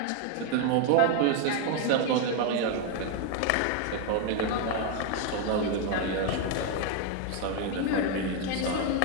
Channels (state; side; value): different; both; correlation 0.01